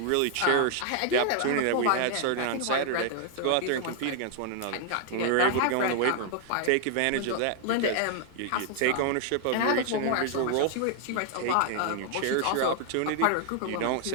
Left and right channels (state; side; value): different; both; correlation 0.00